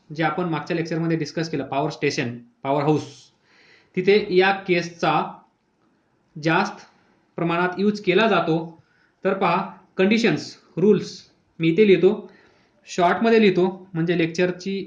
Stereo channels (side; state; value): both; identical; correlation 1.00